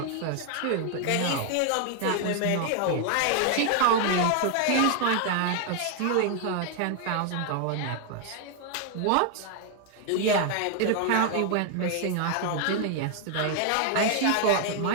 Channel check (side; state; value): both; different; correlation 0.00